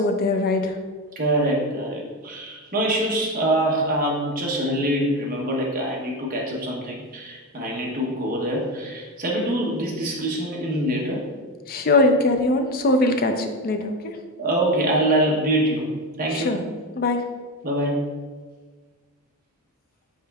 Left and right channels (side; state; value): both; normal; correlation 0.17